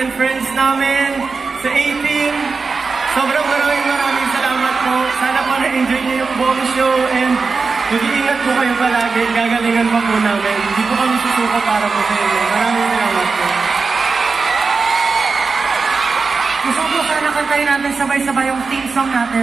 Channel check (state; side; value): quieter; left; 4.6 dB